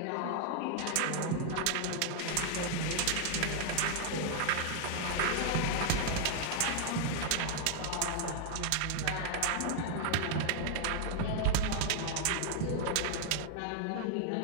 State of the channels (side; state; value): both; different; correlation 0.00